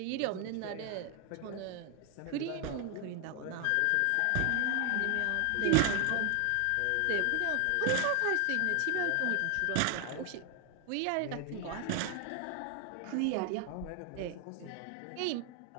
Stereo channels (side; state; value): both; different; correlation 0.00